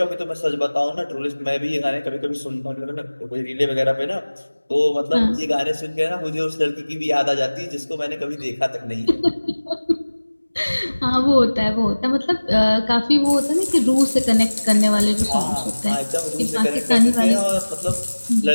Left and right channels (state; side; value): inverted; both; correlation -1.00